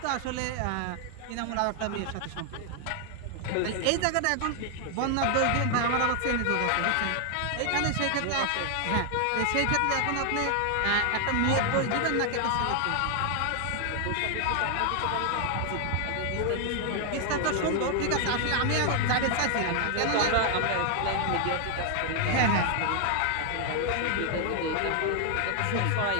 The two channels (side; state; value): both; different; correlation 0.00